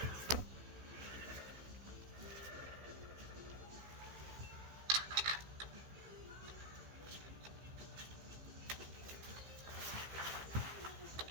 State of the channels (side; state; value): left; late; 15 ms